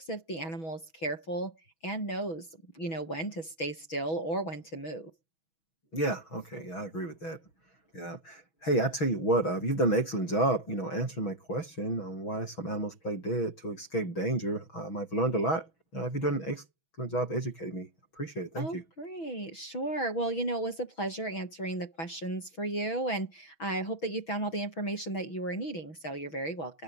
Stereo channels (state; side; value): late; right; 6.2 ms